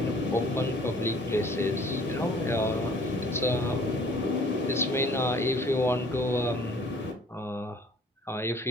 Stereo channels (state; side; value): normal; both; correlation 0.54